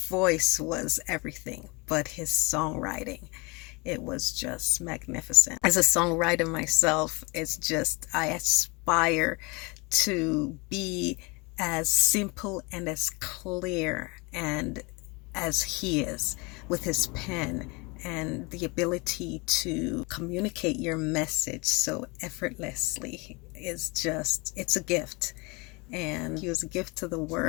was everything, but his songwriting, it was just magnificent. As a songwriter myself, I aspire to be as simple and as clear and as he is with his pen, and the ability to communicate your message so effortlessly it's a gift. And he was a gift to the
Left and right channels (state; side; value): quieter; right; 27.7 dB